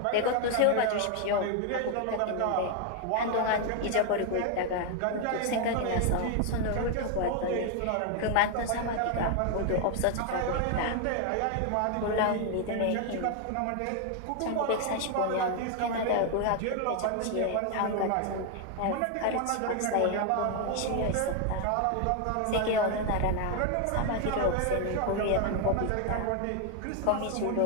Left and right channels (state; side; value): different; both; correlation 0.01